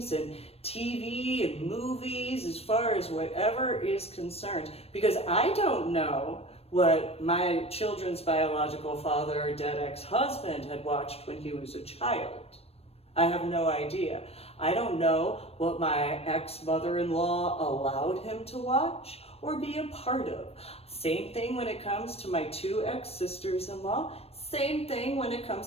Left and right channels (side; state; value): right; late; 0.29 ms